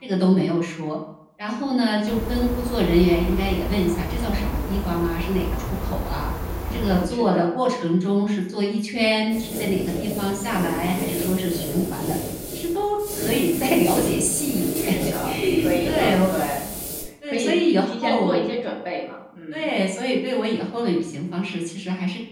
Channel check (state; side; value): identical; both; correlation 1.00